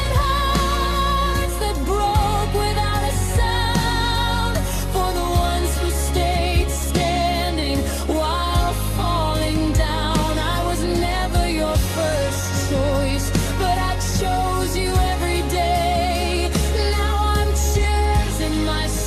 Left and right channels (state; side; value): identical; both; correlation 1.00